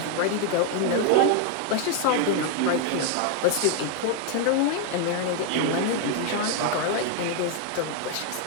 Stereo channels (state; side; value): different; both; correlation 0.00